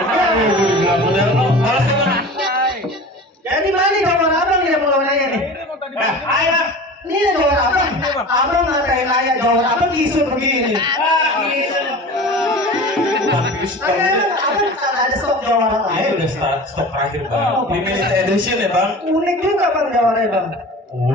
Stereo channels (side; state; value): both; normal; correlation 0.36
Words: Bilang model lo, malas ya bang. Jadi mana gambar abang yang mau nanya nih? Ayo bang. Ini gambar abang. Abang ngatain ayah gambar abang isu begini. Ah, gitu. lagi stok. Ada stok jawara Ini lain. udah stok terakhir bang. Limited edition ya bang. Unik juga bang jawaranya bang.